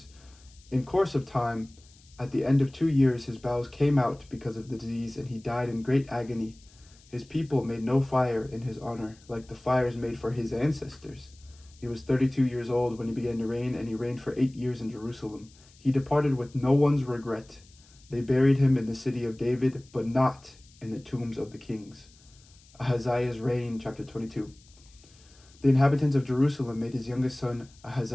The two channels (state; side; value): noise; left; hiss, 27 dB below the sound